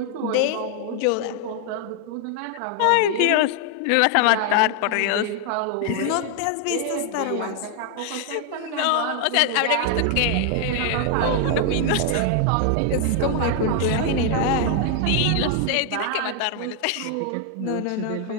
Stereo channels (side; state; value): both; different; correlation 0.00